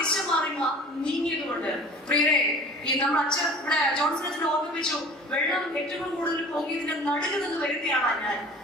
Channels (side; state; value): both; normal; correlation 0.44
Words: മാറി നീങ്ങിയത് കൊണ്ട്. പ്രിയരെ, ഈ നമ്മൾ അച്ഛൻ ഇവിടെ ജോൺസൺ ഓർമ്മിപ്പിച്ചു, വെള്ളം ഏറ്റവും കൂടുതൽ പൊങ്ങിയതിന്റെ നടുക്ക് നിന്ന് വരുത്തിയാണ്